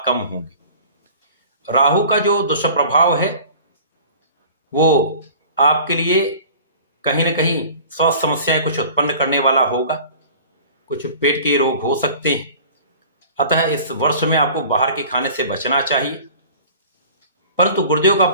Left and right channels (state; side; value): inverted; both; correlation -0.44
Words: कम होंगे। राहु का जो दुष्प्रभाव है वो आपके लिए कहीं ना कहीं स्वास्थ्य समस्याएं कुछ उत्पन्न करने वाला होगा, कुछ पेट के रोग हो सकते हैं। अतः इस वर्ष में आपको बाहर के खाने से बचना चाहिए। परंतु गुरुदेव का